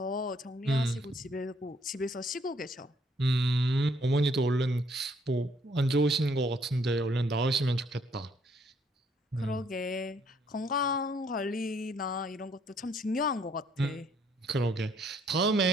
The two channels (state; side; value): normal; both; correlation 0.66